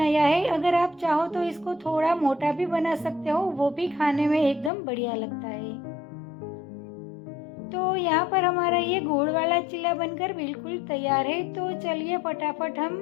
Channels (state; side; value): drops out; right; at 4.7 s